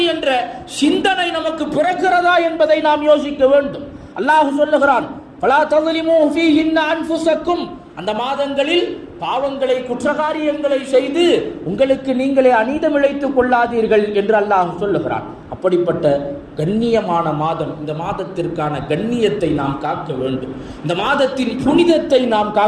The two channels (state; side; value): identical; both; correlation 1.00